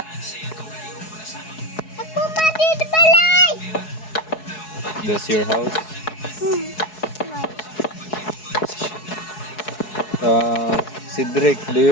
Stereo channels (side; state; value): right; late; 4.7 ms